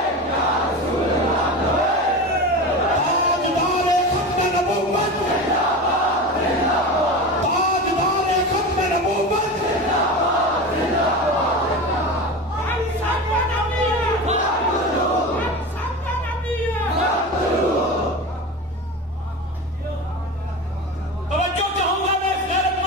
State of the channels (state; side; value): normal; both; correlation 0.27